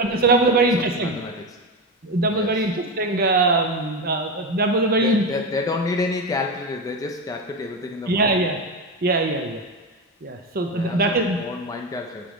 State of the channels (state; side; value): normal; both; correlation 0.16